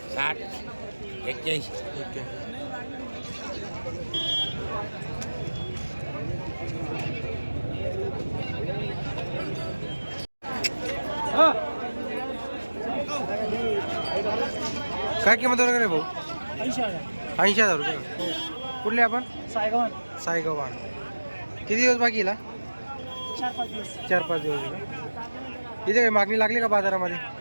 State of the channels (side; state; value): both; inverted; correlation -1.00